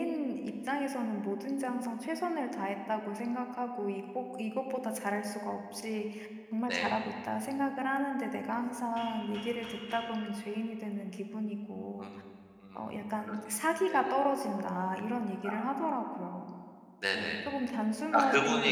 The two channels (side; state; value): both; identical; correlation 1.00